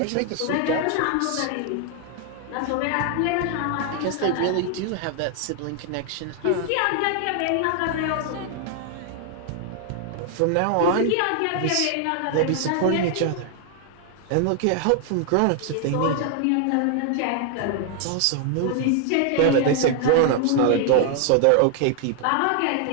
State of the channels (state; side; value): different; both; correlation 0.00